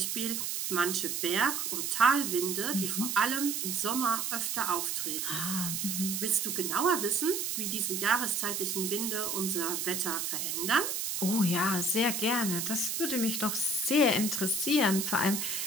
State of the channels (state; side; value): noise; right; hiss, 1 dB below the sound